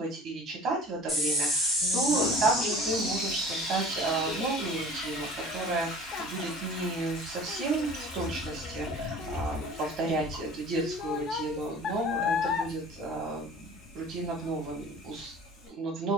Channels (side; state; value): both; normal; correlation 0.44